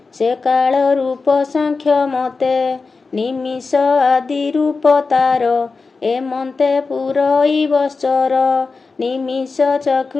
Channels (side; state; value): right; quieter; 4.3 dB